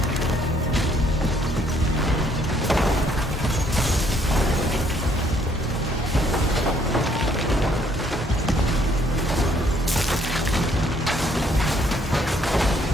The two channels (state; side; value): normal; both; correlation 0.66